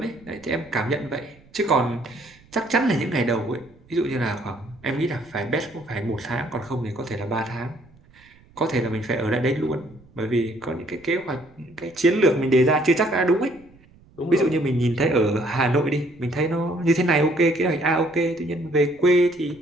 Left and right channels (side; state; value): right; noise; rumble, 27 dB below the sound